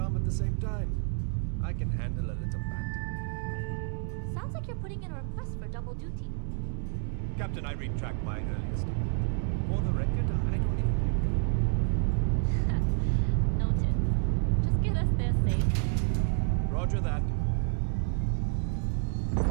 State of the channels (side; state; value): left; silent; 58 dB below the other